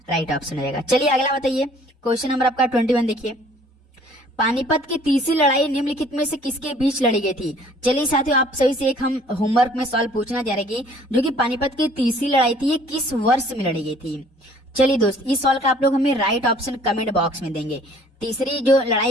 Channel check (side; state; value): both; normal; correlation 0.55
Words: राइट ऑप्शन हो जाएगा। चलिए अगला बताइए क्वेश्चन नंबर आपका 21 देखिए। पानीपत की तीसरी लड़ाई निम्नलिखित में से किसके बीच लड़ी गई थी? चलिए साथियों आप सभी से एक हम होमवर्क में सवाल पूछना चाह रहे हैं जो कि पानीपत की तीसरी लड़ाई थी ये किस वर्ष में लड़ी गई थी? चलिए दोस्त इस सवाल का आप लोग हमें राइट ऑप्शन कमेंट बॉक्स में देंगे। तीसरी जो